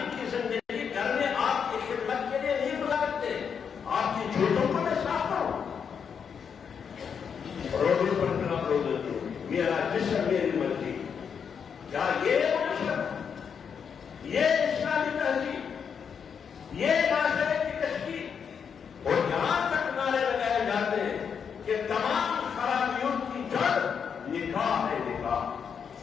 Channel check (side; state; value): right; quieter; 6.9 dB